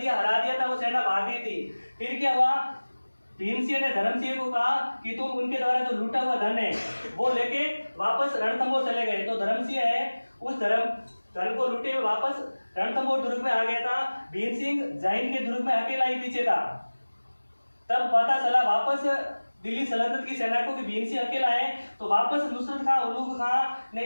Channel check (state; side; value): inverted; both; correlation -1.00